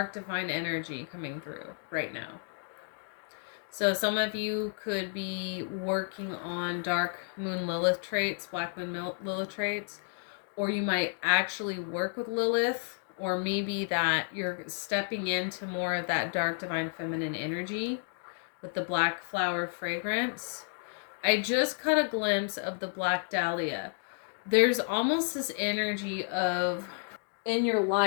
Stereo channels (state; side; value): silent; right; 57 dB below the other